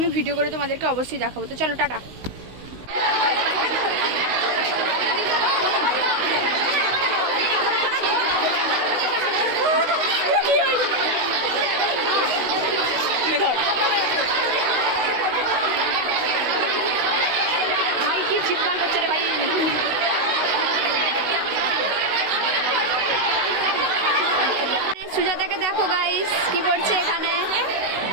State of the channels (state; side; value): late; left; 16 ms